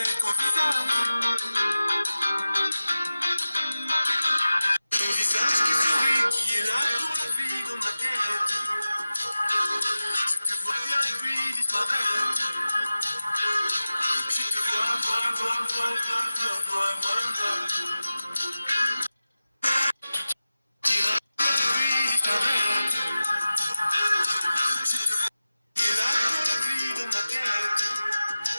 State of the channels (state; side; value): inverted; both; correlation -0.96